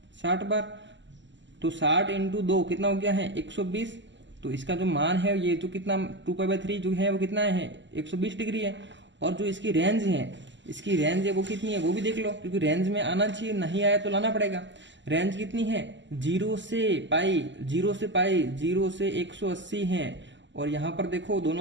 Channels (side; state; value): left; late; 0.54 ms